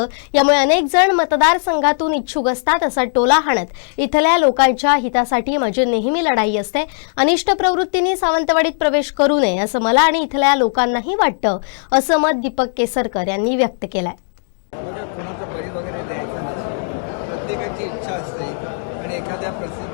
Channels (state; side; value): silent; right; digital silence